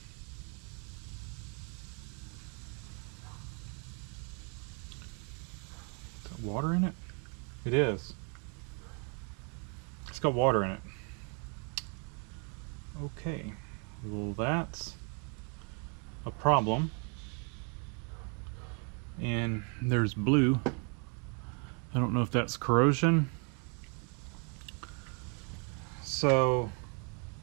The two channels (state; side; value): quieter; left; 37.8 dB